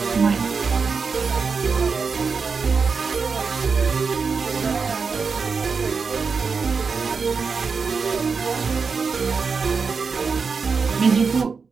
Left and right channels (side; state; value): left; quieter; 5.2 dB